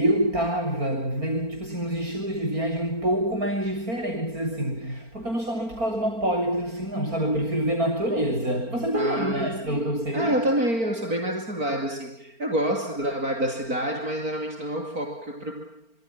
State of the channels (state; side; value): late; left; 4.4 ms